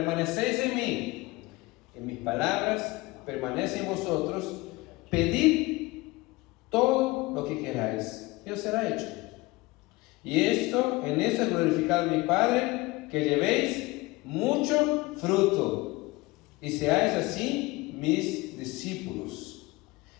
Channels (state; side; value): quieter; right; 21.8 dB